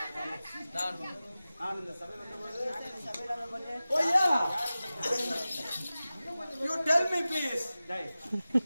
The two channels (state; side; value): inverted; both; correlation -0.96